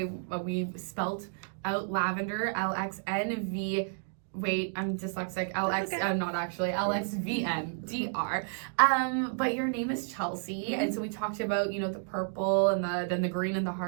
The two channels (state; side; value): silent; left; digital silence